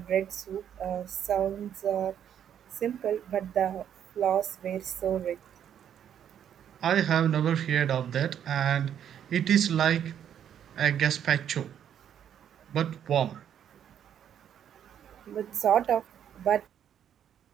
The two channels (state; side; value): quieter; left; 9.4 dB